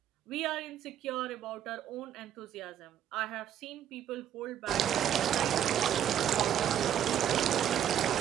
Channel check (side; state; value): left; quieter; 10.1 dB